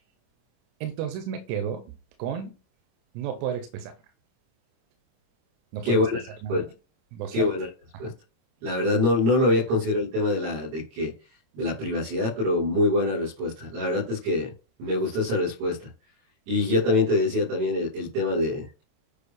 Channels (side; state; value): left; late; 26 ms